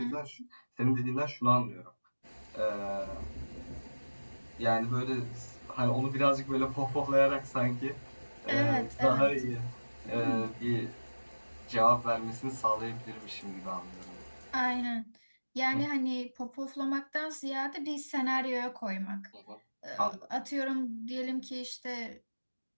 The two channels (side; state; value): both; inverted; correlation -1.00